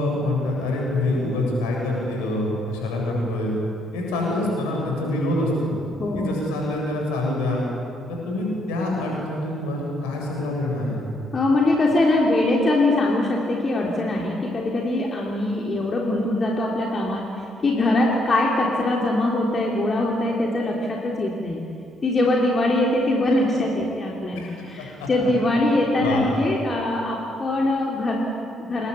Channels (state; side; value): normal; both; correlation 0.73